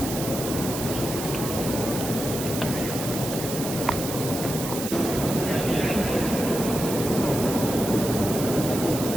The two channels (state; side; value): noise; right; hiss, 7 dB below the sound